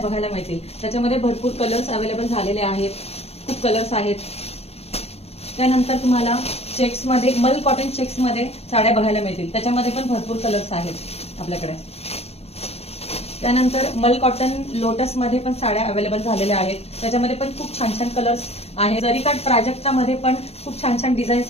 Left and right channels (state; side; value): late; right; 0.29 ms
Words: मिळतील। त्याच्यामध्ये भरपूर कलर्स अवेलेबल झालेले आहेत, खूप कलर्स आहेत। त्यानंतर तुम्हाला चेक्स मध्ये, मल कॉटन चेक्स मध्ये साड्या बघायला मिळतील। त्याच्यामध्ये पण भरपूर कलर्स आहेत आपल्याकडे। त्यानंतर मल कॉटन लोटस मध्ये पण साड्या अवेलेबल झालेल्या आहेत। त्याच्यामध्ये पण खूप छान छान कलर्स आहेत। जरीकाठ प्राजक्तामध्ये पण खूप छान छान